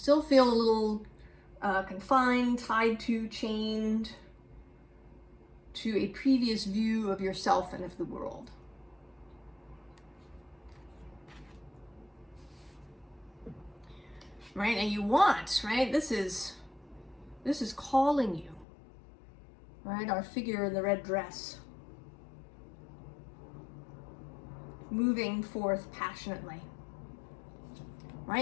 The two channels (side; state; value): right; drops out; at 18.7 s